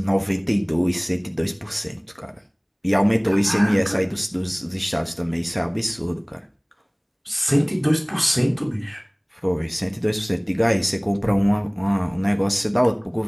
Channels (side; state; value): both; identical; correlation 1.00